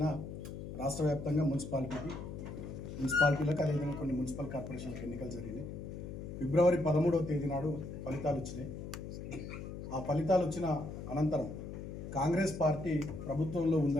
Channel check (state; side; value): noise; left; hum, 8 dB below the sound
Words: రాష్ట్ర వ్యాప్తంగా మున్సిపాలిటీలకు అదేవిధంగా కొన్ని మున్సిపల్ కార్పొరేషన్లకు ఎన్నికలు జరిగినాయి. ఫిబ్రవరి 13వ తేదీ నాడు ఫలితాలు వచ్చినాయి. ఆ ఫలితాలు వచ్చిన అనంతరం కాంగ్రెస్ పార్టీ ప్రభుత్వంలో